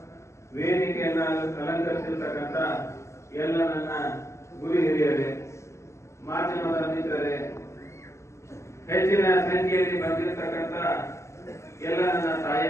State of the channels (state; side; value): late; right; 0.13 ms